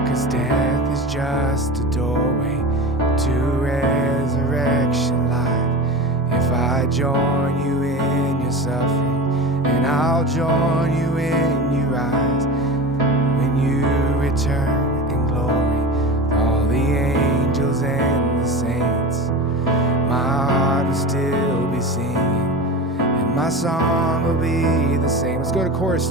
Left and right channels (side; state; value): both; normal; correlation 0.29